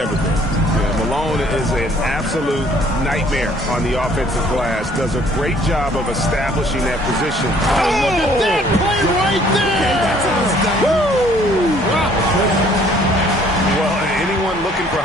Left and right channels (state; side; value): normal; both; correlation 0.59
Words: been. Yeah, Malone is an absolute nightmare on the offensive glass, does a great job of establishing that position. Oh, look at that play right there! Woo! Well, anyone looking for